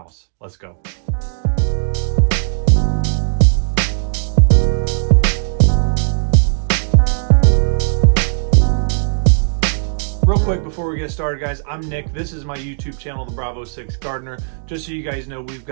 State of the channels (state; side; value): silent; left; digital silence